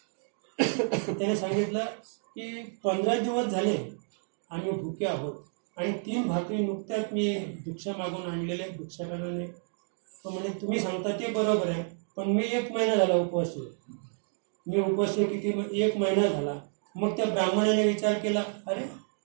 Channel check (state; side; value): silent; left; 58 dB below the other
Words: त्याने सांगितलं की 15 दिवस झाले आम्ही भुके आहोत आणि 3 भाकरी नुकत्याच मी भिक्षा मागून आणलेले भिक्षाटनाने. तो म्हणे तुम्ही सांगता ते बरोबर आहे पण मी 1 महिना झाला उपवास आहे. मी उपवास किती 1 महिना झाला. मग त्या ब्राह्मणाने विचार केला अरे